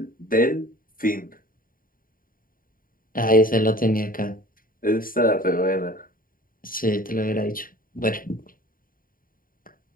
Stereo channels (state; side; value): late; right; 0.41 ms